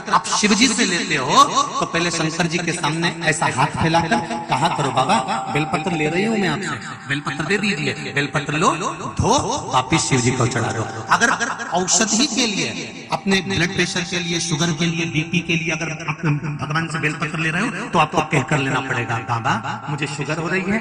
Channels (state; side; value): identical; both; correlation 1.00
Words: आप शिवजी से लेते हो, तो पहले शंकर जी के सामने ऐसा हाथ फैलाकर कहा करो, बाबा बेलपत्र ले रही हूं मैं आपसे, बेलपत्र दे दीजिए, बेलपत्र लो, धो, वापिस शिव जी को चढ़ा दो। अगर औषधि के लिए, अपने ब्लड प्रेशर के लिए, शुगर के लिए, बीपी के लिए अगर आप भगवान से बेलपत्र ले रहे हो, तो आपको कहकर लेना पड़ेगा, बाबा मुझे शुगर हो रही